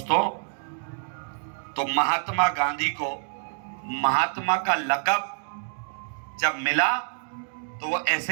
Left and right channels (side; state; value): left; silent; 60 dB below the other